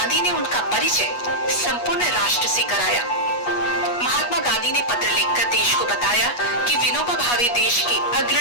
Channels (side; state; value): right; late; 8.3 ms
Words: ने उनका परिचय संपूर्ण राष्ट्र से कराया। महात्मा गांधी ने पत्र लिखकर देश को बताया कि विनोबा भावे देश के